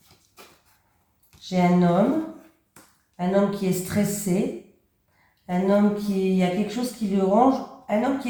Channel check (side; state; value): both; identical; correlation 1.00